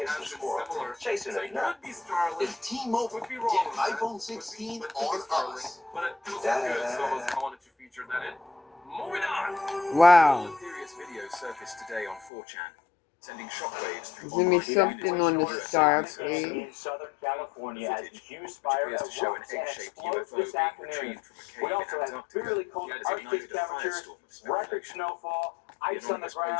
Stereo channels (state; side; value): drops out; right; at 12.3 s